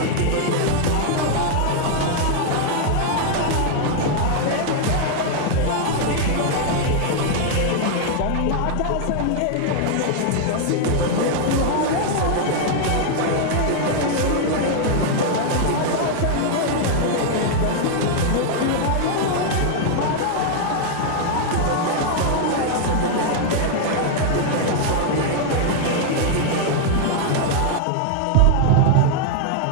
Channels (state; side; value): different; both; correlation 0.00